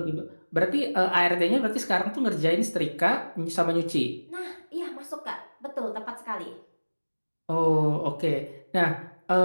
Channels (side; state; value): both; inverted; correlation -1.00